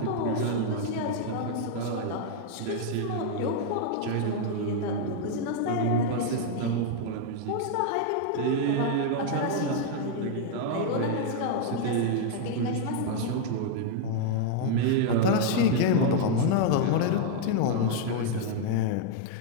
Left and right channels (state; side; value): different; both; correlation 0.00